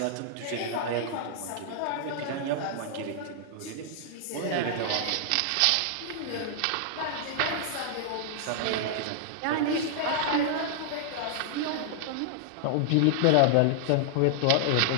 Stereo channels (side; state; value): both; different; correlation -0.01